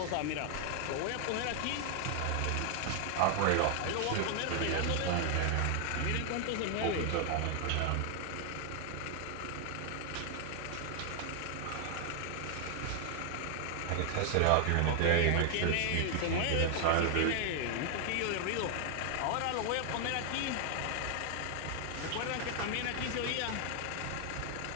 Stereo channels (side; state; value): both; different; correlation 0.00